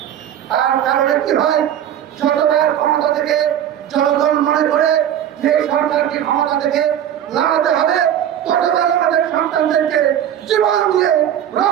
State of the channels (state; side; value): quieter; left; 10.4 dB